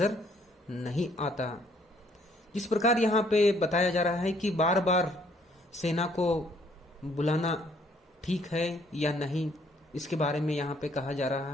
नहीं आता। जिस प्रकार यहाँ पे बताया जा रहा है कि बार बार सेना को बुलाना ठीक है या नहीं, इसके बारे में यहाँ पे कहा जा रहा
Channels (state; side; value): normal; both; correlation 0.64